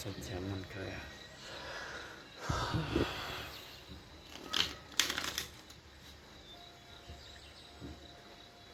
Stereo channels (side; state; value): both; identical; correlation 1.00